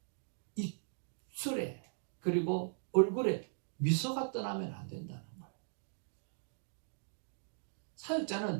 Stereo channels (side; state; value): left; silent; digital silence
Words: 입술에 그리고 얼굴에 미소가 떠나면 안 된다는 거예요.